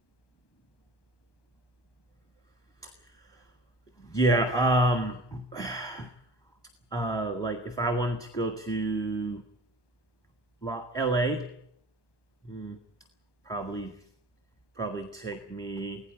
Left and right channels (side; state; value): right; late; 1.2 ms